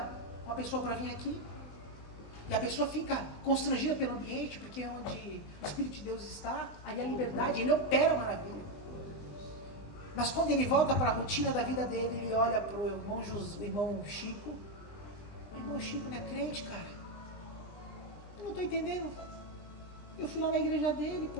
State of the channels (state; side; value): late; right; 20 ms